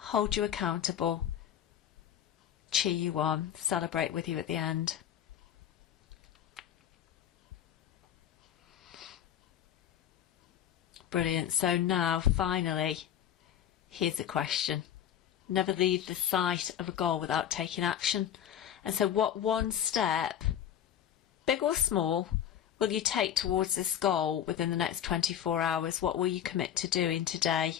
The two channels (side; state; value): right; quieter; 10.0 dB